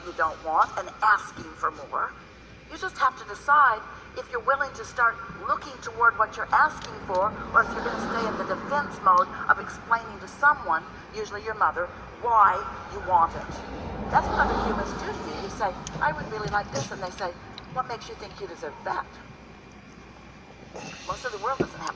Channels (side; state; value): both; identical; correlation 1.00